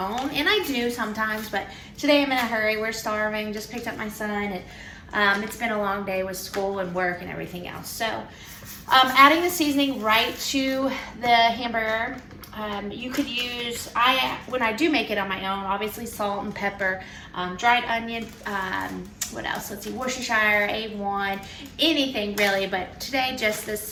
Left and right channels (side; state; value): both; identical; correlation 1.00